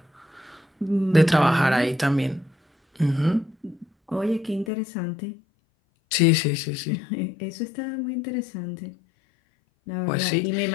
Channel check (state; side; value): drops out; right; at 4.7 s